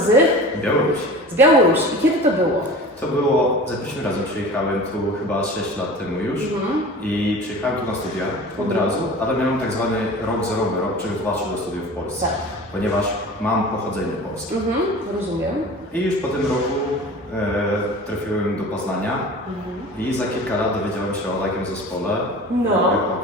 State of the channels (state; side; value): normal; both; correlation 0.38